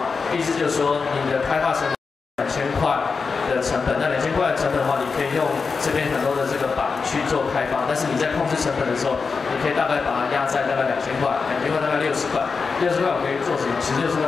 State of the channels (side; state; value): right; quieter; 4.9 dB